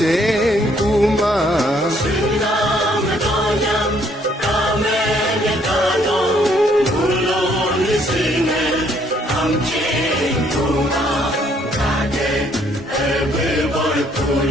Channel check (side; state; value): both; normal; correlation 0.66